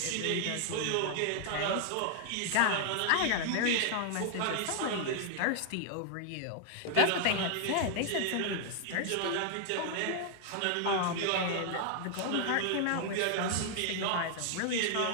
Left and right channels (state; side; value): different; both; correlation 0.00